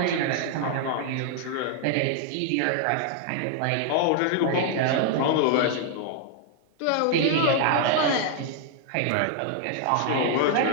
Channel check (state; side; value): different; both; correlation 0.00